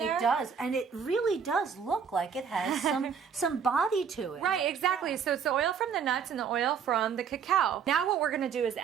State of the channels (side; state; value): left; quieter; 6.9 dB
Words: It does, and it really does look like it has some body to it. Right, exactly. So it's the oil from the nuts and the oil from the cacao. Now what we're going to do is